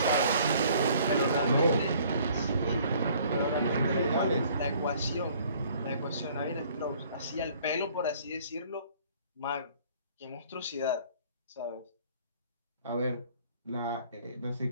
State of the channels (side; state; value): both; inverted; correlation -0.56